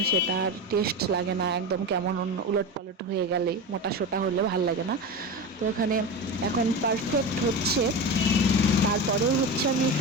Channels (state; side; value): normal; both; correlation 0.23